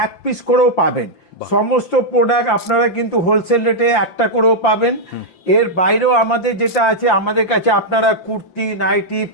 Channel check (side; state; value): right; late; 5.8 ms